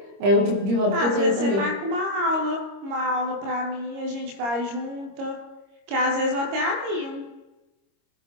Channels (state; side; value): late; left; 25 ms